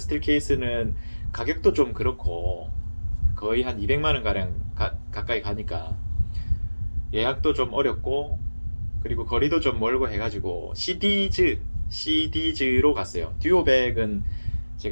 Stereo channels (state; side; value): inverted; both; correlation -1.00